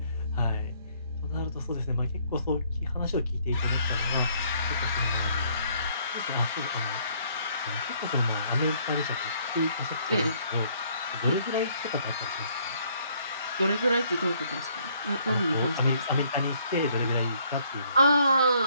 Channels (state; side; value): inverted; both; correlation -0.65